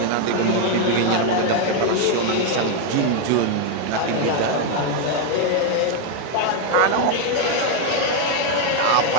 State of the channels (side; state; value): both; different; correlation 0.01